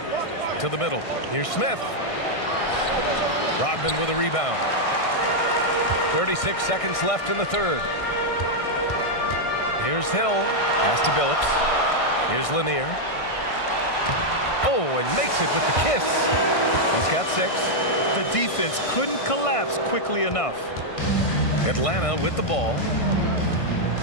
To the middle. Here's Smith. Rodman with a rebound. 36 seconds left in the third. Here's Hill. Pass to Billups. Here's Lanier. Oh, and makes it with the kiss. He's got 6. The defense couldn't collapse quickly enough. Atlanta with the ball.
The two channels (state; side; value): late; right; 1.6 ms